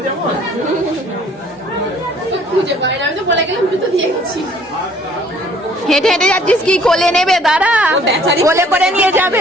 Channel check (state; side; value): normal; both; correlation 0.58